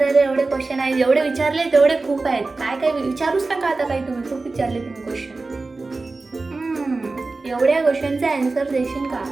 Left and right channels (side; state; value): left; quieter; 3.6 dB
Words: एवढे क्वेश्चन आहेत. जेवढे विचारले तेवढे खूप आहेत. काय विचारूच नका आता. काही तुम्ही खूप विचारले तुम्ही क्वेश्चन. एवढ्या क्वेश्चनचा आन्सर देशील का?